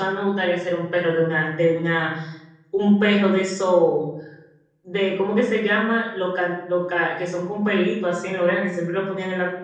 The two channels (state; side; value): identical; both; correlation 1.00